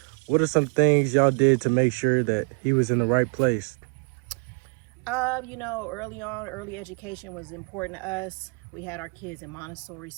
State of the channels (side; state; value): left; quieter; 35.0 dB